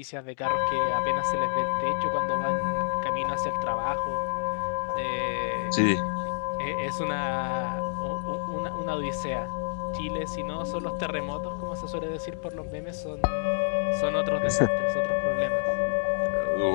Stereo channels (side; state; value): right; silent; digital silence